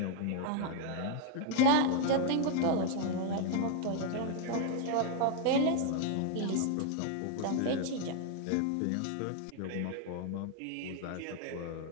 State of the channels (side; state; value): both; different; correlation 0.00